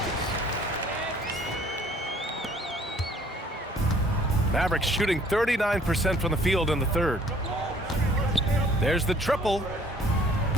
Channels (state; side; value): normal; both; correlation 0.57